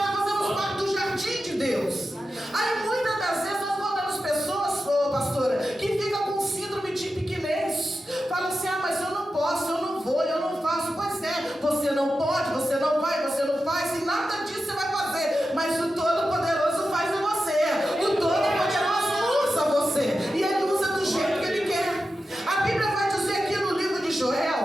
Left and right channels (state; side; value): normal; both; correlation 0.91